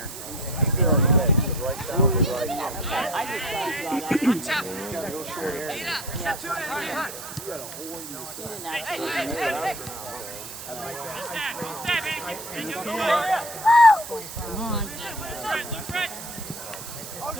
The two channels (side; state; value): right; noise; hiss, 11 dB below the sound